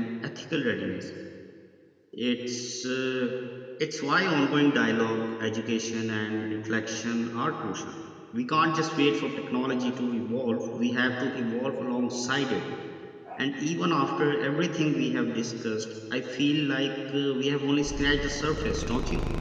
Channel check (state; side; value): identical; both; correlation 1.00